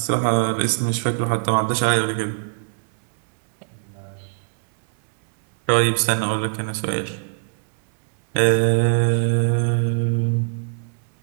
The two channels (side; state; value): left; silent; 64 dB below the other